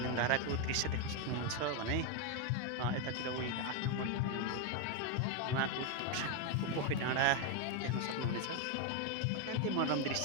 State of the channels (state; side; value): different; both; correlation 0.01